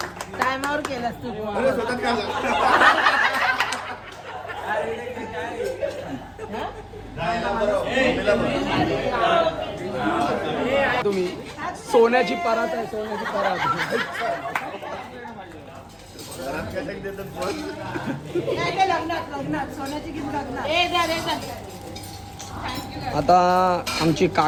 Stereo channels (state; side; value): identical; both; correlation 1.00